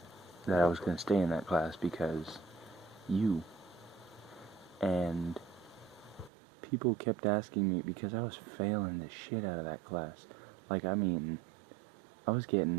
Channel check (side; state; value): left; drops out; at 6.3 s